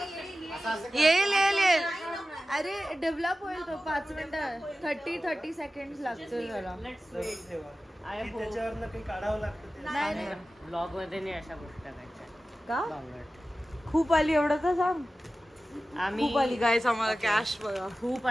येईल. अरे डेव्हलप होईल तो. 5 मिनिटं 30 सेकंड लागतील जरा. त्याच्यावर काही काढावं लागतं. नाही ब्लॉग मध्ये नाही अशा गोष्टी टाकायच्या. का खूप आली एवढं तर सांग. आम्ही खूप आली गाईस आम्हाला कॅश बघा. खूप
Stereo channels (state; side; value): normal; both; correlation 0.95